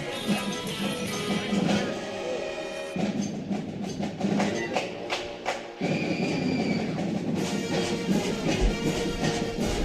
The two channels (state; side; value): identical; both; correlation 1.00